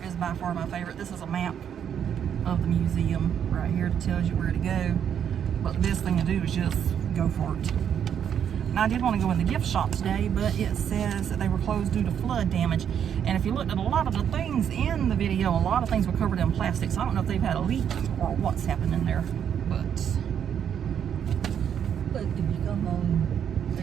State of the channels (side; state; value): left; quieter; 8.7 dB